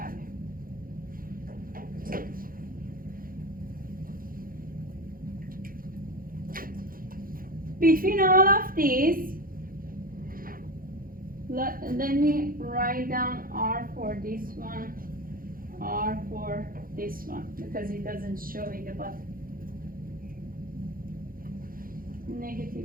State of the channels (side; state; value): left; late; 0.41 ms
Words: Between all of these, let me write down R for this one, R for this one, because it doesn't show in the bottom.